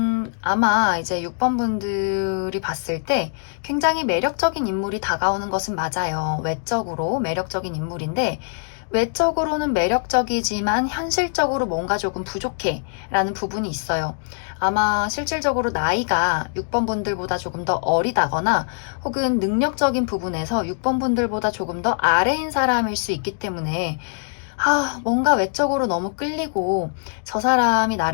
아마 이제 6번 분들이 봤을 때 굉장히 매력적인 인물이 다가오는 것은 맞아요. 외적으로 매력적인 인물인데 외적으로는 매력적이지만 현실적으로 뭔가 조금 부족해 라는 부분이 있어요. 아마 실질적으로 나이가 6번 분들보다 조금 더 어리다거나 혹은 능력적인 부분에서 6번 분들보다 조금 더 아래인 사람일 수 있기 때문에 뭔가 외적으로 너무 끌리고 저 사람이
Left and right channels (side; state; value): right; silent; digital silence